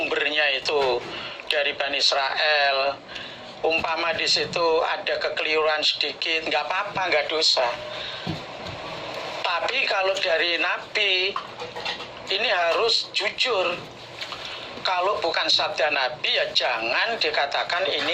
itu dari Bani Israel, umpama di situ ada kekeliruan sedikit, nggak apa-apa, nggak dosa. Tapi kalau dari Nabi, ini harus jujur. Kalau bukan sabda Nabi, ya jangan dikatakan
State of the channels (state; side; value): identical; both; correlation 1.00